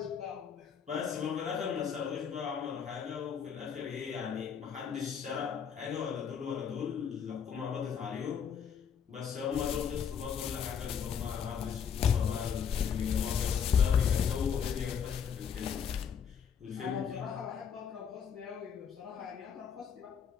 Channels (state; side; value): quieter; right; 7.4 dB